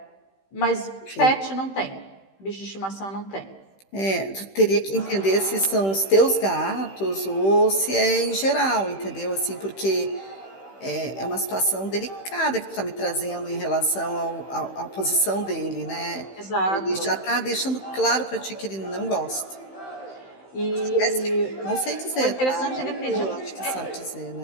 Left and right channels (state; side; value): late; right; 15 ms